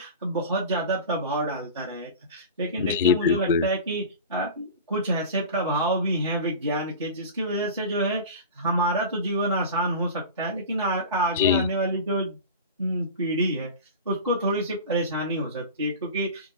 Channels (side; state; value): both; inverted; correlation -0.31